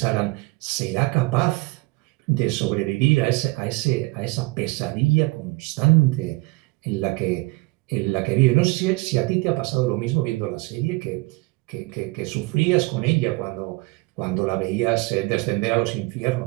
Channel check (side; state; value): left; quieter; 24.0 dB